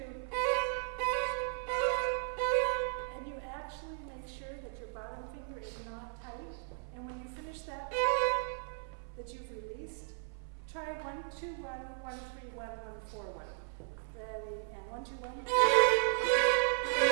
and you actually make sure that your bottom finger is not tight. And when you finish that, that you've released, try 1, 2, 1, 1, 3, 1, 1, 4, 1. Ready, and 1, 2, 1.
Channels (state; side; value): silent; left; 54 dB below the other